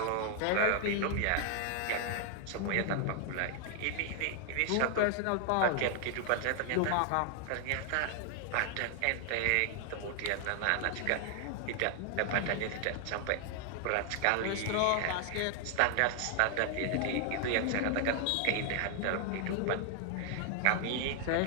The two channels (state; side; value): different; both; correlation 0.00